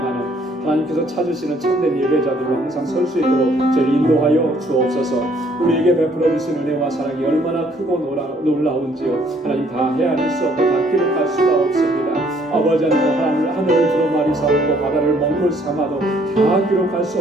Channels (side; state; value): both; normal; correlation 0.64